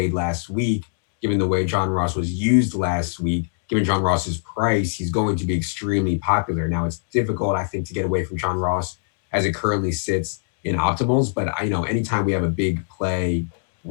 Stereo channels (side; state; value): right; silent; digital silence